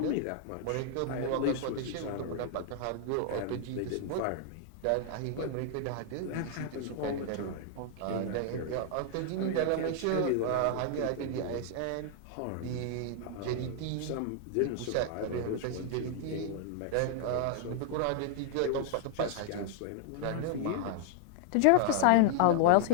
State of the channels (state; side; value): different; both; correlation -0.01